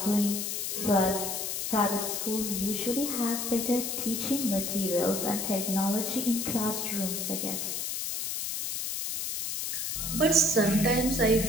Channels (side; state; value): left; noise; hiss, 3 dB below the sound